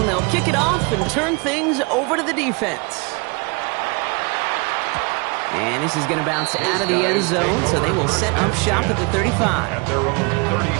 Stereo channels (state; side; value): quieter; left; 30.5 dB